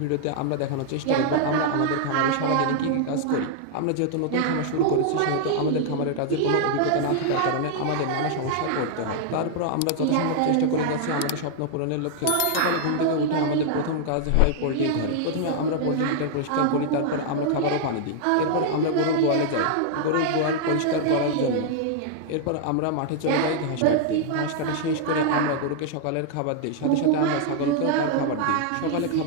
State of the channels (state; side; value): different; both; correlation -0.01